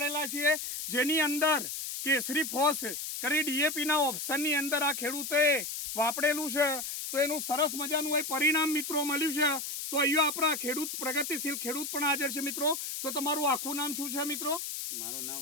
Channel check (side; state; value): left; noise; hiss, 5 dB below the sound